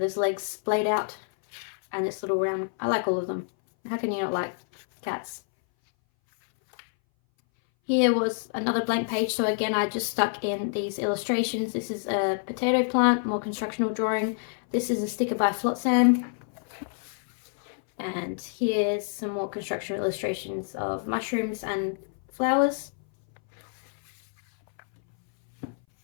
his legs splayed out. and this little round. I like all of them. How can you not like cats? Here was another blank page, so again I just stuck in these illustrations. This is a potato plant, more constructional drawing. This is a sticker by Flotsam. And here's some more construction illustrations of mushrooms and flowers.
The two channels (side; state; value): right; silent; 59 dB below the other